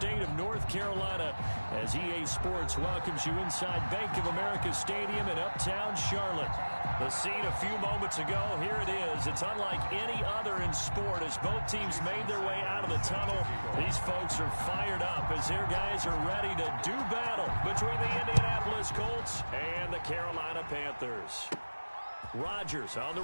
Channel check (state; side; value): inverted; both; correlation -1.00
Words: of North Carolina as EA Sports welcomes you inside Bank of America Stadium in uptown Charlotte. The scene a few moments ago, here it is. It's unlike any other in sport as both teams made their way out of the tunnel. These folks are fired up as their guys are ready to do battle between the Indianapolis Colts and the Carolina Panthers. Rodgers on the